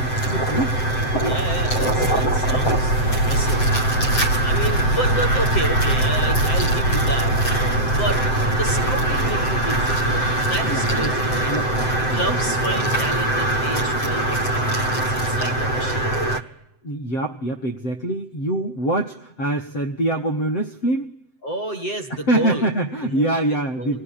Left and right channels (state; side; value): late; right; 7.8 ms